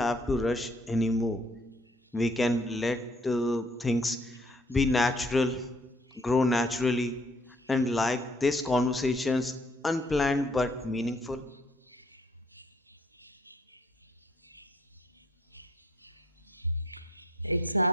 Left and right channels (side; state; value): both; normal; correlation 0.61